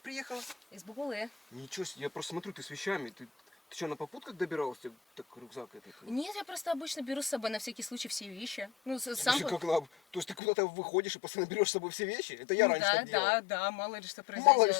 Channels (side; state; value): right; drops out; at 10.4 s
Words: Из Бугулы. Ничего себе, я просто смотрю, ты с вещами. Ты что, на попутках добиралась? Тебе так рюкзак этот? Нет, я просто обычно беру с собой на всякий случай все вещи. Ну, сам... Слушай, то есть ты куда-то выходишь и постоянно берешь с собой все вещи? Это я раньше так делал. Да, мало ли что произойдет. Мало ли